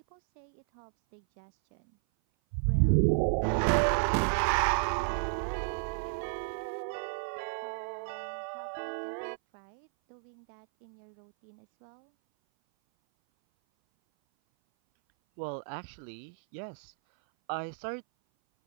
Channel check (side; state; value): left; silent; 56 dB below the other